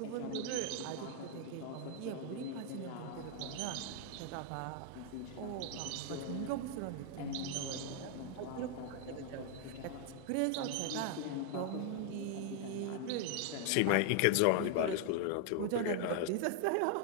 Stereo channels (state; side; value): different; both; correlation 0.00